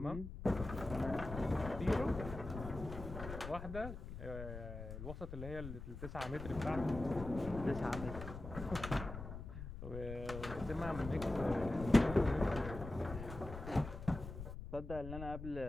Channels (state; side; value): noise; left; rumble, 9 dB below the sound